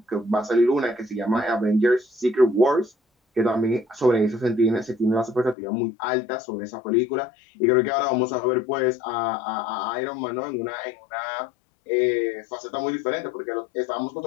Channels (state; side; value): drops out; right; at 5.6 s